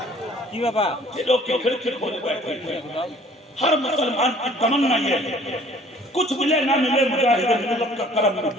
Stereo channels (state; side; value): normal; both; correlation 0.54